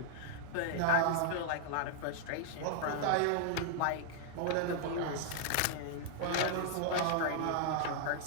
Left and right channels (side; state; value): both; different; correlation -0.01